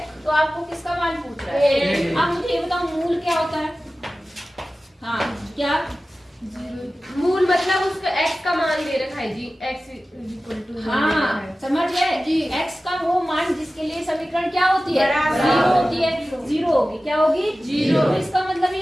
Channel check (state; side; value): normal; both; correlation 0.96